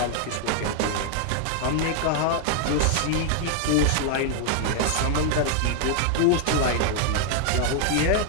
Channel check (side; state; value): both; different; correlation 0.00